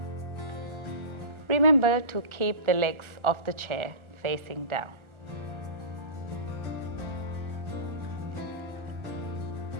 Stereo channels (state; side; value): late; left; 1.4 ms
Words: Remember to keep the legs of the chair facing down.